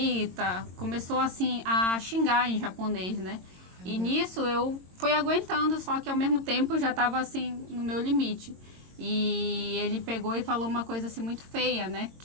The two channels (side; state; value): left; late; 22 ms